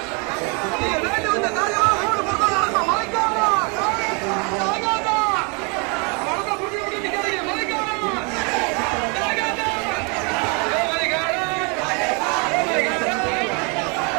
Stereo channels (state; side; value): quieter; left; 33.0 dB